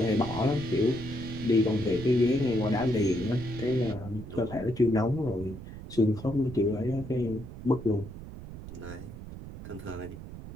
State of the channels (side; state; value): right; noise; rumble, 12 dB below the sound